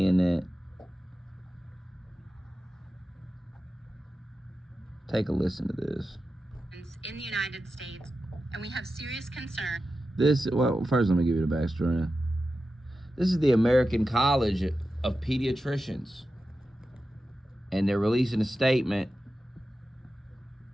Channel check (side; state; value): both; normal; correlation 0.92